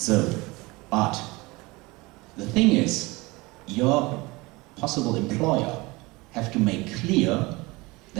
but the thing is, your possible employer have to make clear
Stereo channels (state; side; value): quieter; left; 23.3 dB